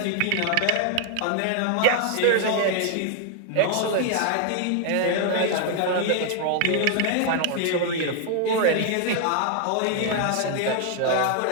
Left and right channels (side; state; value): both; different; correlation 0.00